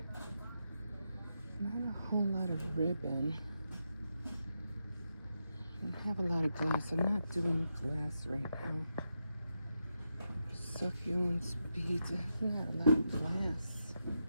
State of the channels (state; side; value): inverted; both; correlation -0.85